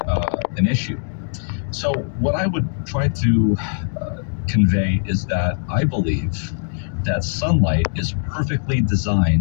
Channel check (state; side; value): silent; right; 65 dB below the other